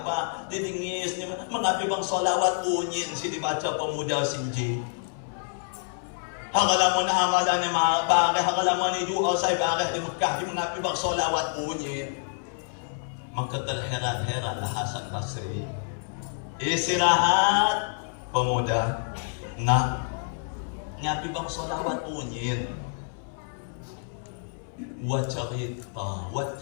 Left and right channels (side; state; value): right; silent; 60 dB below the other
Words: didengis mengapi bang solawat unyin si dibaca pemuda sinji. Hangalamun amalan ni bareh, hangalamun ni doa saya bareh di Mekah di mengapi bang solawat unyin. Maka terheran-heranlah Hasan Basri. Istirahat pemuda nak ngapi bang solawat unyin. Buat cerita, buat